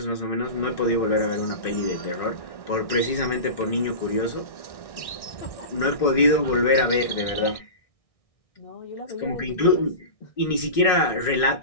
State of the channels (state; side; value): late; right; 1.6 ms